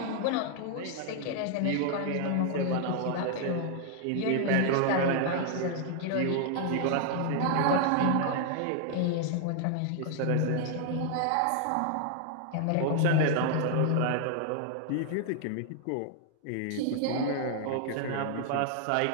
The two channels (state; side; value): different; both; correlation 0.00